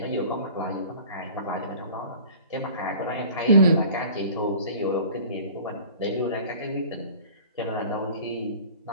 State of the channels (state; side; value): inverted; both; correlation -0.44